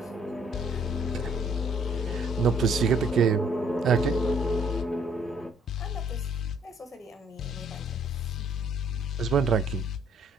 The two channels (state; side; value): normal; both; correlation 0.63